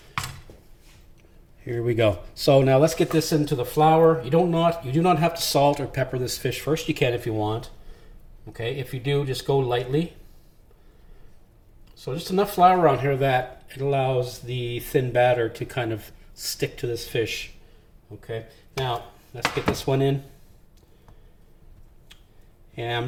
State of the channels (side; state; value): both; identical; correlation 1.00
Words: Here we go. So now let's get this into the flour. You do not have to salt or pepper this fish first. You can if you want. Okay, if you do, just go lightly. So just enough flour on here that it allows the thin batter to kind of stick to this fish. Okay, now let's get this one in. And I'm